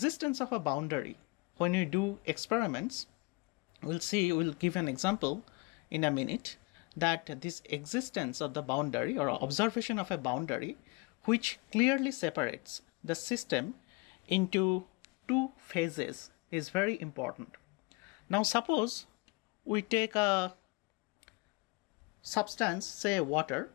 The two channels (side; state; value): right; quieter; 27.4 dB